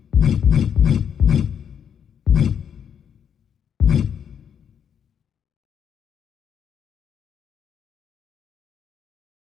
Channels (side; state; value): right; quieter; 8.1 dB